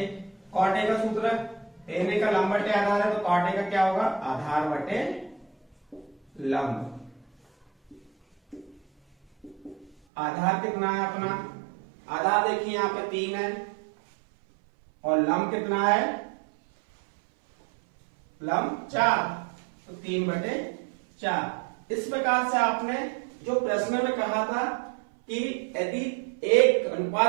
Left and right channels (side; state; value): left; drops out; at 9.9 s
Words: cot A का सूत्र tan a का लंब बटे आधार है, तो कॉट ए का क्या होगा, आधार बटे लंब। आधार कितना है अपना, आधार देखिए यहां पे 3 है, और लंब कितना है, लंब 4, तो 3/4। इस प्रकार से आपने जो प्रश्न में कहा था कि यदि एक